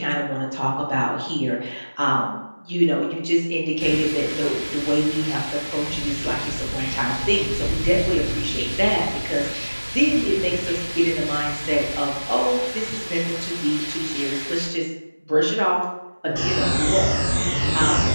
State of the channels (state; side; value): inverted; both; correlation -1.00